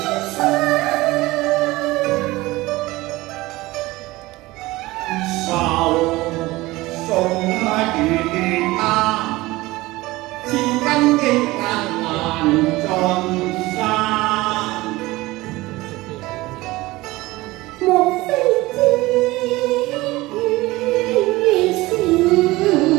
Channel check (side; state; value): left; quieter; 19.8 dB